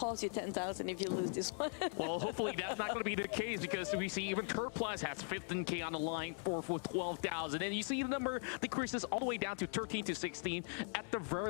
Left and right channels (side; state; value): right; silent; 51 dB below the other